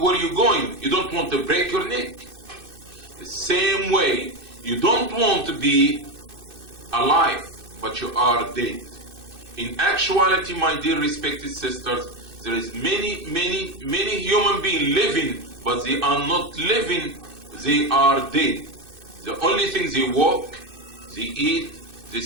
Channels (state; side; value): late; left; 2.6 ms